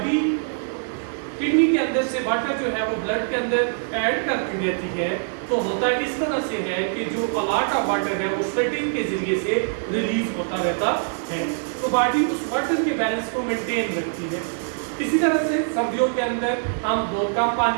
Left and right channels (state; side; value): silent; left; digital silence